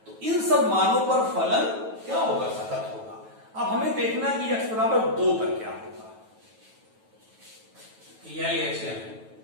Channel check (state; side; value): late; left; 9.2 ms